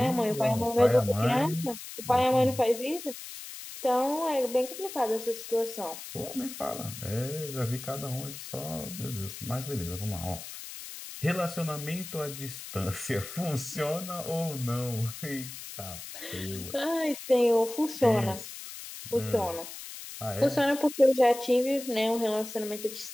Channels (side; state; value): left; noise; hiss, 11 dB below the sound